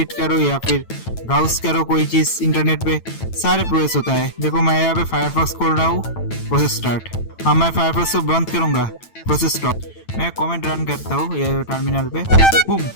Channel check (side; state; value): right; late; 9.0 ms